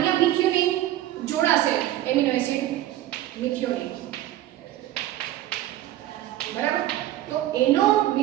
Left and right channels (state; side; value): quieter; left; 14.1 dB